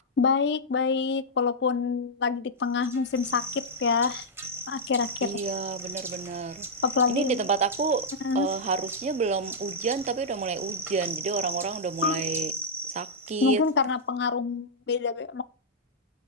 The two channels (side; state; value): both; normal; correlation -0.08